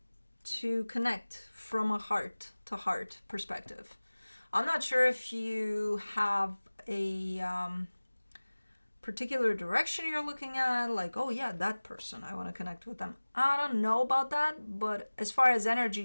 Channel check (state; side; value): inverted; both; correlation -1.00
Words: to connect from a heart-to-heart perspective. I'm not sure if you have a particular direction you're looking at, like, oh yeah, that person, I want to connect with them. I don't know about that, but as far as energy